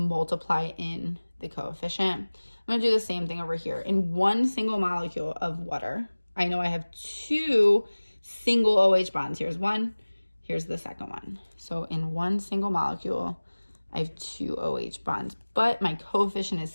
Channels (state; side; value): inverted; both; correlation -1.00